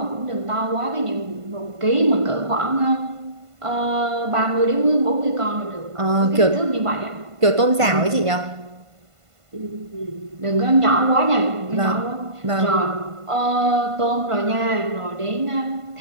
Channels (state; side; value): late; left; 1.5 ms